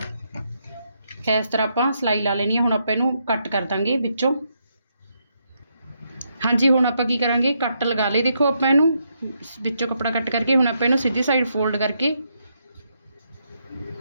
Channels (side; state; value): both; inverted; correlation -0.79